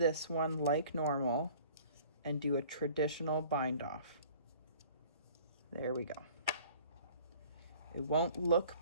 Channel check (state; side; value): inverted; both; correlation -0.50